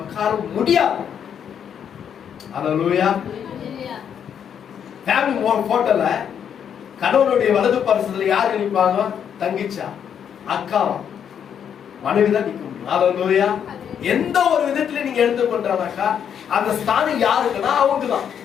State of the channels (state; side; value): quieter; right; 8.3 dB